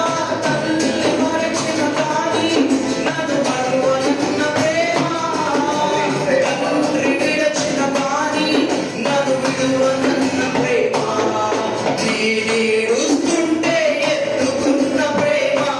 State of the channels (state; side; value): identical; both; correlation 1.00